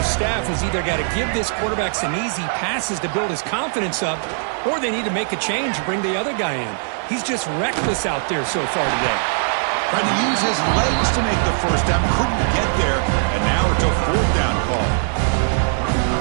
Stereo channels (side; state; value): left; silent; digital silence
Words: staff has either got to give this quarterback some easy passes to build his confidence up, or they need to make a change and bring the other guy in. He's just reckless out there so far today. Tried to use his legs to make the first down. Couldn't get there. And now it's a 4th down call.